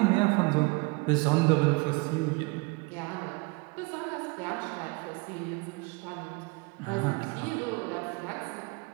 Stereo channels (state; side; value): quieter; left; 28.0 dB